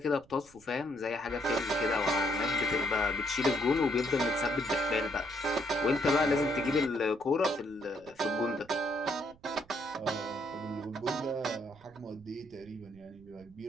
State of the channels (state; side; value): noise; right; rumble, 26 dB below the sound